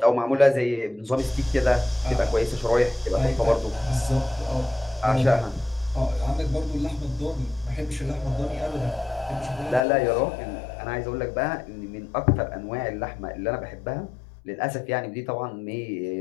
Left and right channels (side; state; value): right; drops out; at 9.8 s